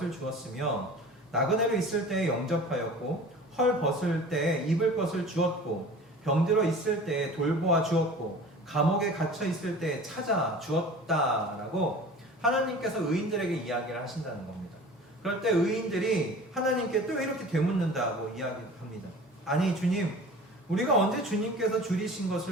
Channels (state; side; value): normal; both; correlation 0.41